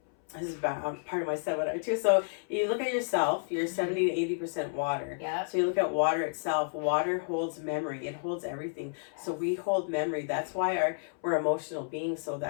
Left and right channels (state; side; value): silent; right; 57 dB below the other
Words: this is part of my seminar too. So you look at yourself, you're 70 to 80% water. Yeah. So you look at water itself. Water holds memory. It holds everything. So we hold memory. That's why we're emotional beings. So